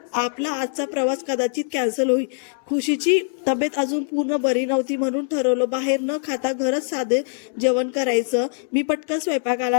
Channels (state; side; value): silent; right; digital silence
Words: आपला आजचा प्रवास कदाचित कॅन्सल होईल. खुशीची तब्येत अजून पूर्ण बरी नव्हती, म्हणून ठरवलं बाहेर न खाता घरच साधे जेवण करायचं. मी पटकन